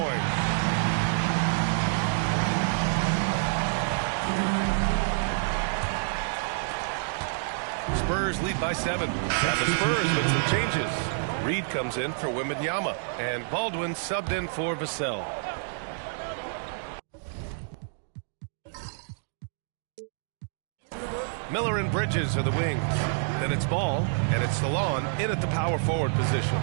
Spurs lead by 7. And the Spurs with some changes. Reed comes in for Wembanyama, and Baldwin subbed in for Vassell. Miller and Bridges are the wings. Then it's Ball, and it's Salon in at the power forward position.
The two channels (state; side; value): silent; left; digital silence